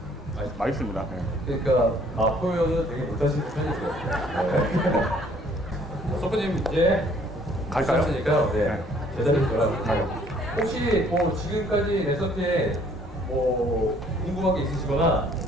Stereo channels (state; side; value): normal; both; correlation 0.60